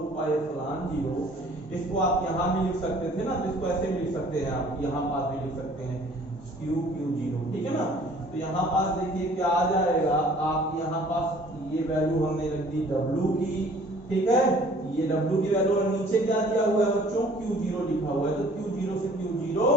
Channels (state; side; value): normal; both; correlation 0.54